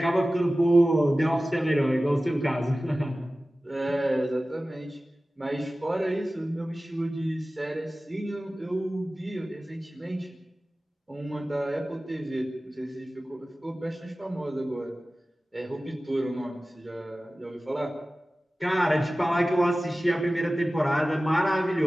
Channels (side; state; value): both; normal; correlation 0.96